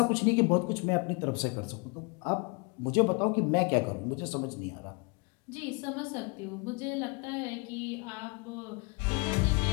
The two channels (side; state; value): right; quieter; 31.1 dB